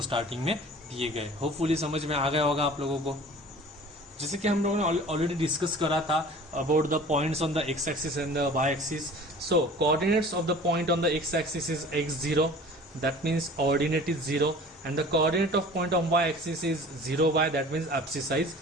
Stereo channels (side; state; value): both; normal; correlation 0.44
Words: starting में दिए गए. Hopefully समझ में आ गया होगा आप लोगों को. जैसे कि हम लोगों ने ऑलरेडी डिस्कस करा था about the points on the X axis and the Y axis. So coordinates of the point on the X axis is x0, that means ordinate is 0, and the coordinate of point on y axis is 0y, that means abscissa is